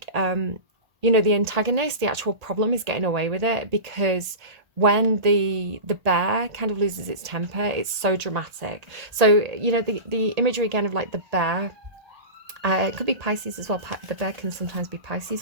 you know, the antagonist, the actual problem is getting away with it, because when the bear kind of loses its temper, it's so dramatic. So, you know, the imagery again of like the bear, it could be Pisces as well. The bear can sometimes be Pisces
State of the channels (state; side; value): late; left; 1.8 ms